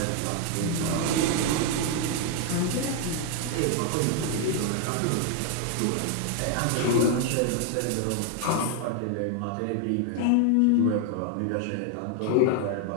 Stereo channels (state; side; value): different; both; correlation 0.00